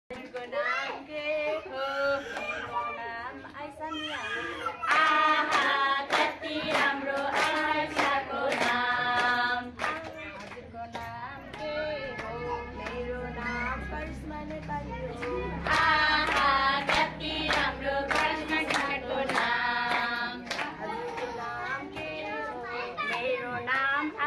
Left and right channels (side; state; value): both; identical; correlation 1.00